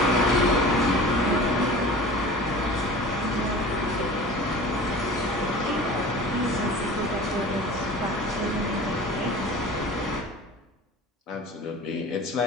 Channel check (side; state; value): both; normal; correlation 0.40